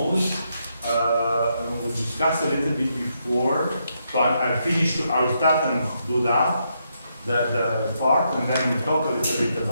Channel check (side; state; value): both; inverted; correlation -0.79